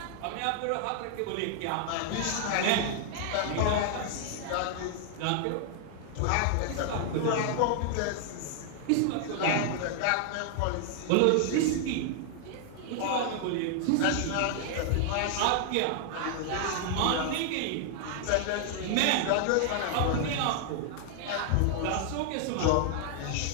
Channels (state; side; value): different; both; correlation 0.00